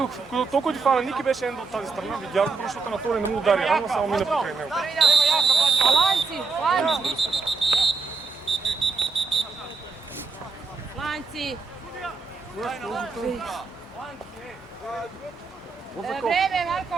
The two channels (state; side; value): quieter; left; 4.4 dB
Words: толкова ти фана Ники беше Ендъл от тази страна, видях го, защото на втори не му удари, ама само мина покрай него. Lanci, lanci. Lanci. Vreme, Marko.